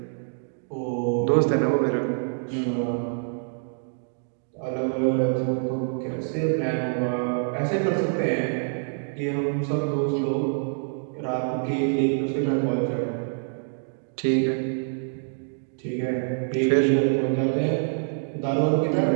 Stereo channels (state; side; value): silent; left; digital silence